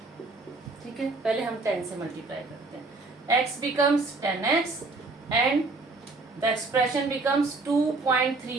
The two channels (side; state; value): left; quieter; 3.5 dB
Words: ठीक है, पहले हम 10 से मल्टीप्लाई करते हैं. x becomes 10x and the expression becomes